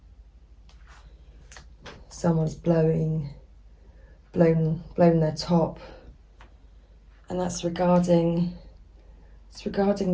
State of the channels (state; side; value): identical; both; correlation 1.00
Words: Someone's blown their top. And that's regarding